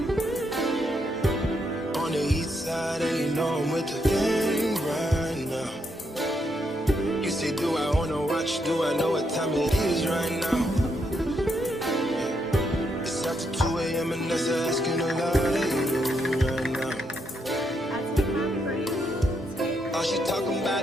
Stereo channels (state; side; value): normal; both; correlation 0.78